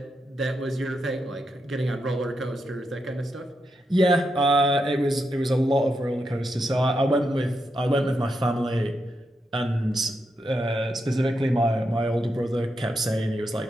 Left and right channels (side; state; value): both; normal; correlation 0.84